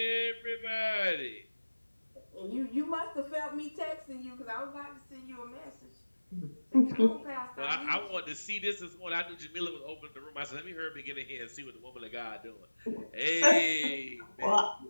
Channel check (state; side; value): inverted; both; correlation -1.00